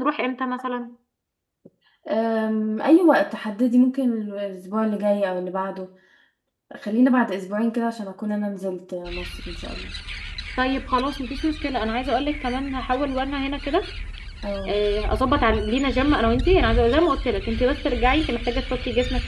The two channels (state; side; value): identical; both; correlation 1.00